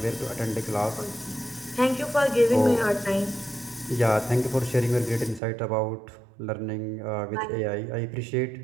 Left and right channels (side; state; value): left; drops out; at 5.4 s